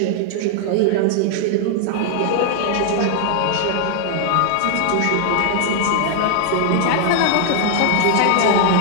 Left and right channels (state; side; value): different; both; correlation 0.00